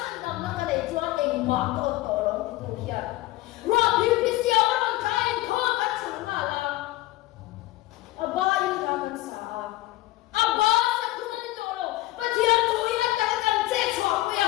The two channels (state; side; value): quieter; right; 17.6 dB